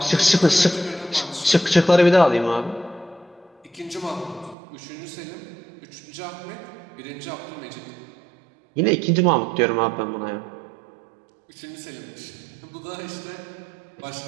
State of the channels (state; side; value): drops out; left; at 4.5 s